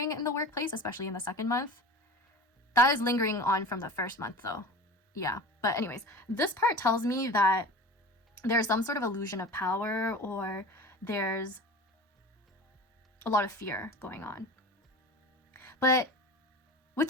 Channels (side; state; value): both; normal; correlation 0.34